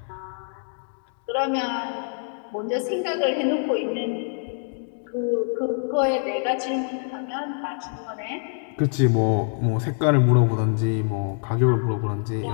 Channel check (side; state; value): right; silent; 57 dB below the other